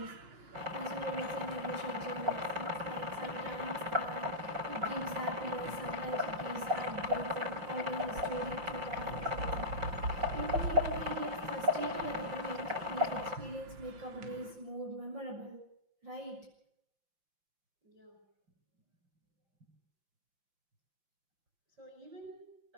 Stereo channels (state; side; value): late; left; 5.7 ms